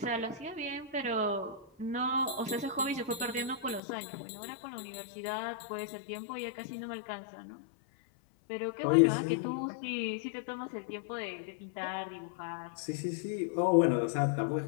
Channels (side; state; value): right; drops out; at 3.8 s